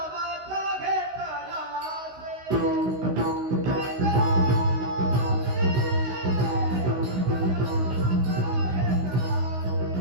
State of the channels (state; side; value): late; left; 16 ms